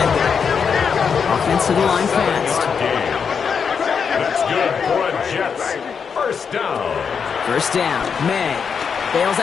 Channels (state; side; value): quieter; right; 6.4 dB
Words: Offense to the line fast. That's good for a Jets 1st down. 1st down, May. Bails